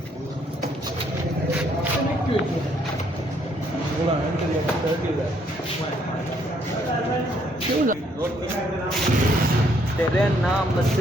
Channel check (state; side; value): normal; both; correlation 0.69